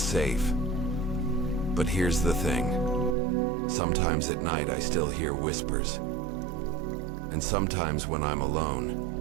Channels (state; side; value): drops out; left; at 3.2 s